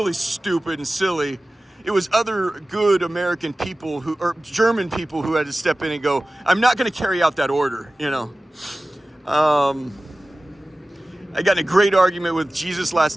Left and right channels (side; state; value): both; normal; correlation 0.97